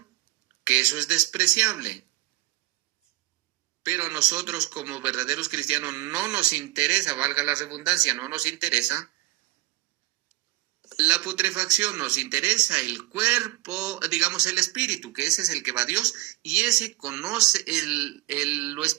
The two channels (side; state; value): left; quieter; 18.6 dB